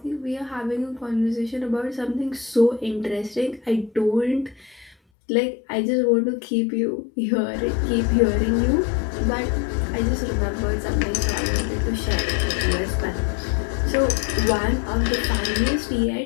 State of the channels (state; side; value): drops out; right; at 5.0 s